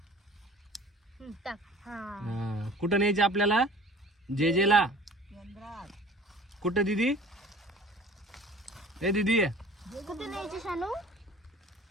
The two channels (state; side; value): normal; both; correlation 0.46